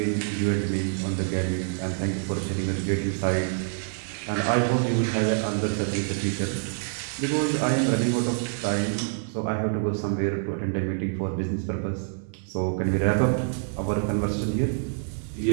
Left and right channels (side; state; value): left; silent; 61 dB below the other